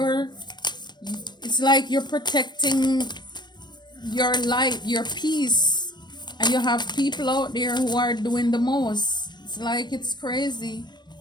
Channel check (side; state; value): right; late; 0.21 ms